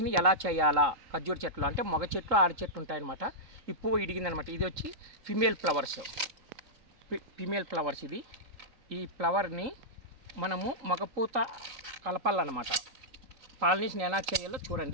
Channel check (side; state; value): left; late; 3.9 ms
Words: ఎలా చేయాలా, ఖర్జూర చెట్లు అంటే మగ చెట్లు ఆడ చెట్లు ఉంటాయన్నమాట. ఈ పువ్వు ఇడిగిందనమాట. ఇది వచ్చి ఫిమేల్ ఫ్లవర్స్ ఇది. ఈ ఫ్లవర్ని మనము మగపూత కలపాలన్నమాట. పాలినేషన్ ఎలా చేయాలో